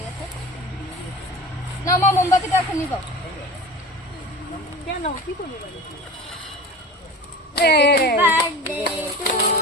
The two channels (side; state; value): both; normal; correlation 0.35